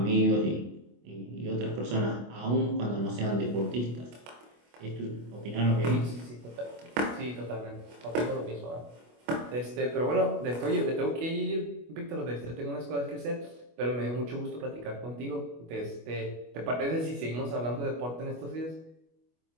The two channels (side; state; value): left; late; 25 ms